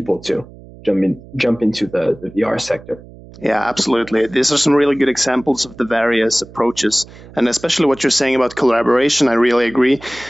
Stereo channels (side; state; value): right; noise; hum, 20 dB below the sound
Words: to jump into the VR sector. Yeah, absolutely. These are some really good examples of the various approaches, and especially what you're saying about collaboration. I really agree.